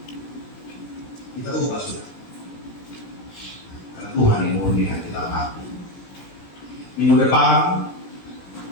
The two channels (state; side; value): late; right; 17 ms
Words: Kita ubah sudah. Karena Tuhan yang murni hati kita hati. Minggu depan,